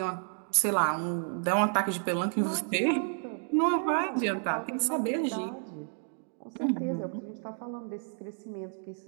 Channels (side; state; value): left; silent; 57 dB below the other